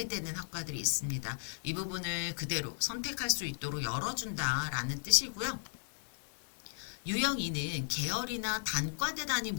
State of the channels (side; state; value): right; silent; 54 dB below the other